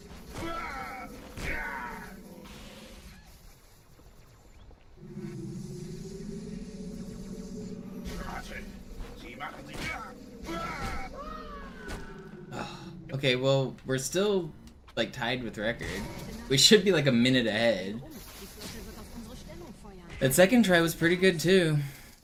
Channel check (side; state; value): both; identical; correlation 1.00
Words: Okay, well, we're still like tied with record. We should be like a minute ahead. That second try was pretty good too.